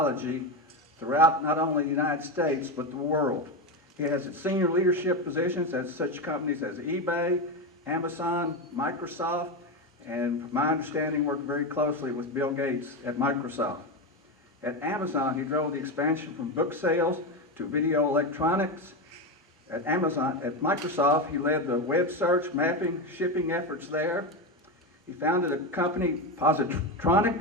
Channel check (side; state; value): both; normal; correlation 0.14